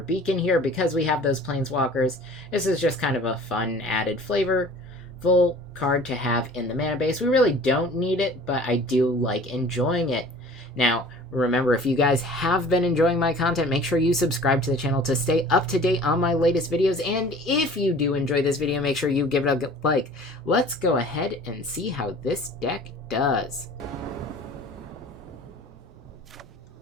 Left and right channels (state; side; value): normal; both; correlation 0.46